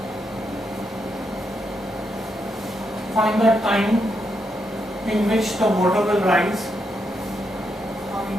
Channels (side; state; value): both; normal; correlation 0.81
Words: Find the time in which the water will rise. Find